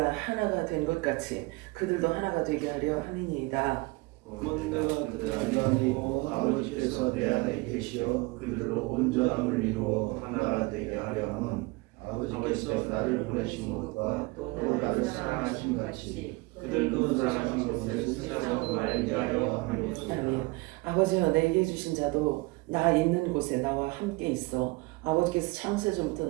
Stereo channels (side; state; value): left; quieter; 24.6 dB